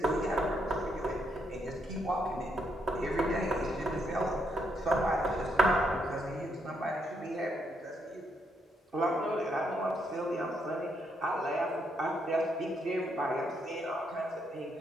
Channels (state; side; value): normal; both; correlation 0.76